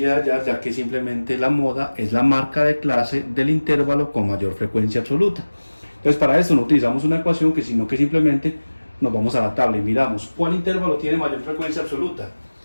de hallar, ya que simplemente la moda es la marca de clase del intervalo con mayor frecuencia absoluta. Entonces para eso no utilizamos una ecuación, sino que simplemente nos vamos a la tabla y miramos cuál intervalo tiene mayor frecuencia absoluta.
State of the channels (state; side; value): inverted; both; correlation -1.00